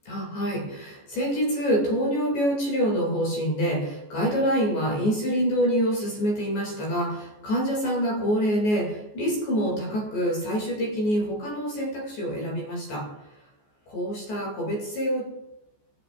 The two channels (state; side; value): late; right; 14 ms